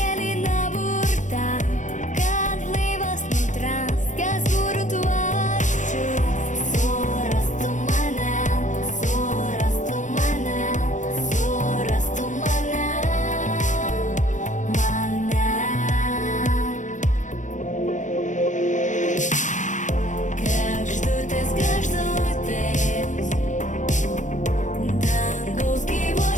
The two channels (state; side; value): late; right; 0.36 ms